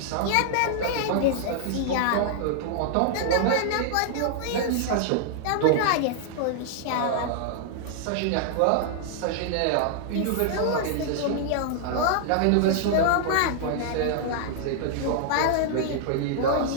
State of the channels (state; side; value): different; both; correlation -0.01